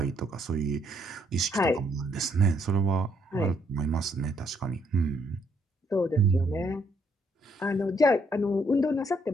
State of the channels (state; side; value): normal; both; correlation 0.70